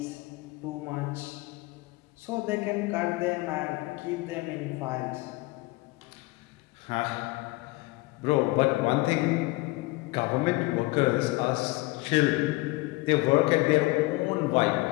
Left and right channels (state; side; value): quieter; right; 22.2 dB